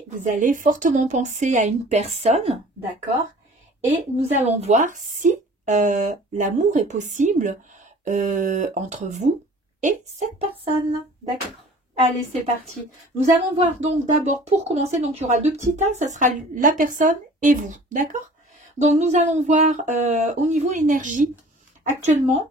vous allez fortement penser à une personne, d'accord? Et nous allons voir si l'amour est possible entre vous et cette personne, d'accord? Allez, c'est parti. Nous allons voir donc d'abord, pour commencer, donc il y aura deux petits tas, ça sera la personne et vous, d'accord? Donc nous allons voir au niveau énergie, actuellement,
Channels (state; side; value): normal; both; correlation 0.47